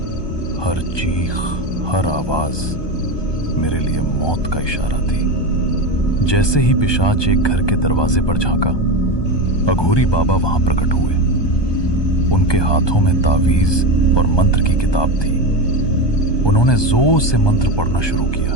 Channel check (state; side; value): late; right; 1.2 ms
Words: हर चीख, हर आवाज मेरे लिए मौत का इशारा थी। जैसे ही पिशाच एक घर के दरवाजे पर झांका, अघोरी बाबा वहां प्रकट हुए। उनके हाथों में तावीज और मंत्र की किताब थी। उन्होंने जोर से मंत्र पढ़ना शुरू किया।